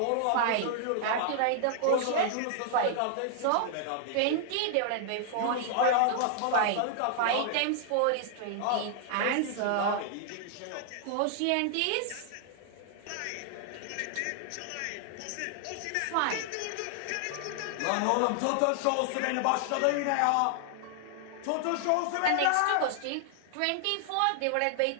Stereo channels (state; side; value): different; both; correlation -0.01